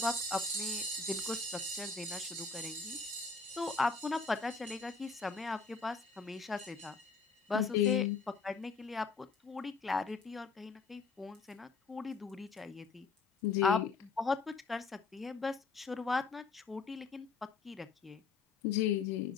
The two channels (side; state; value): right; quieter; 4.4 dB